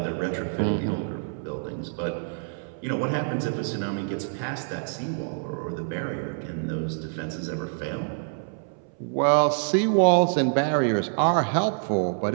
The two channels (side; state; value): left; silent; 60 dB below the other